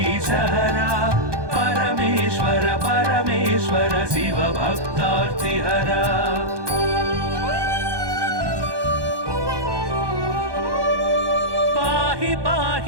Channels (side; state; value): left; late; 1.2 ms